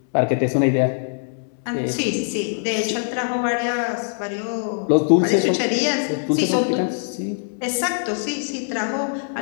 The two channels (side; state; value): right; silent; digital silence